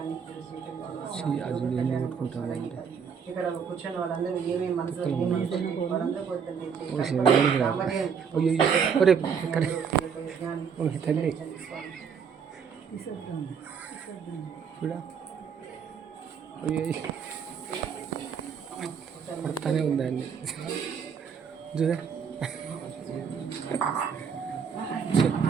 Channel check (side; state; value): left; quieter; 6.7 dB